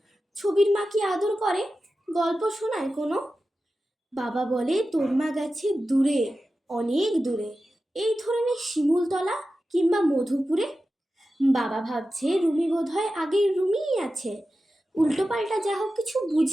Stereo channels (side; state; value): both; normal; correlation 0.93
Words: ছবির মা কি আদর করে, গল্প শোনায় কোনো? বাবা বলে তোর মা গেছে দূরে, অনেক দূরে, এই ধরনের শিমুলতলা কিংবা মধুপুরে। বাবা ভাবছে রুমি বোধহয় আগের রুমিই আছে, উল্টো পাল্টা যা হোক কিছু